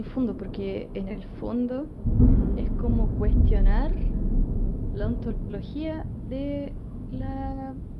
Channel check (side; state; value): both; identical; correlation 1.00